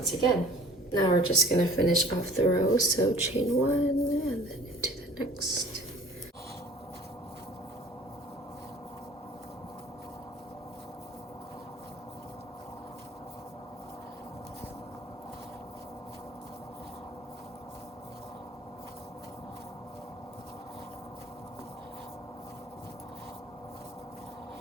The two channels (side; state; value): both; normal; correlation 0.49